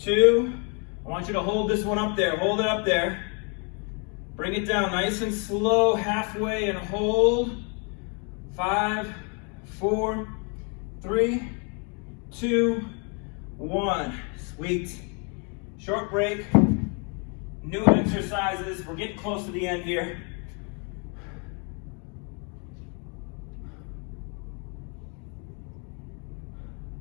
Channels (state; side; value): quieter; right; 36.3 dB